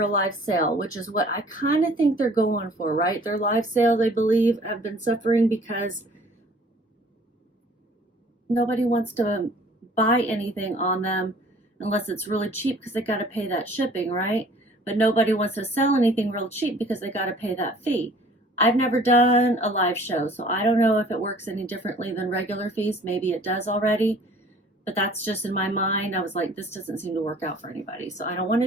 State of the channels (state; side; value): normal; both; correlation 0.53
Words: a live sale, which is what I kind of think they're going for, right? Their live sales, I believe, have been suffering because nobody wants to buy anything on them unless it's really cheap because they got to pay that shipping, right? But nobody wants to sell anything real cheap because they got to pay that fee. I've never done a live show, so I don't know if it works any differently than regular fees. Maybe it does already, but that's just in my mind. I was like, this doesn't seem to work out for anybody, so I don't want